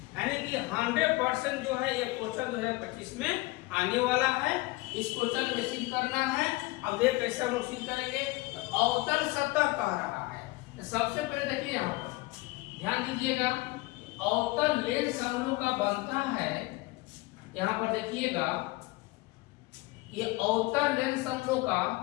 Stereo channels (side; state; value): right; quieter; 21.6 dB